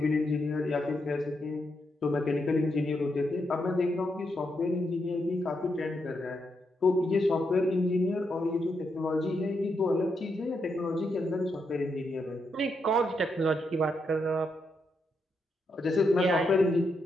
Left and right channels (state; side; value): normal; both; correlation 0.81